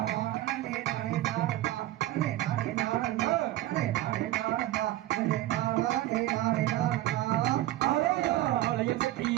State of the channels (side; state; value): left; quieter; 15.2 dB